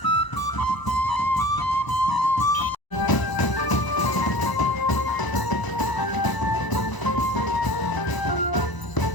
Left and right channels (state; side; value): late; right; 1.0 ms